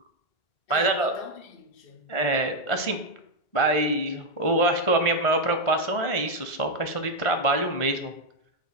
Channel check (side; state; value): right; late; 1.5 ms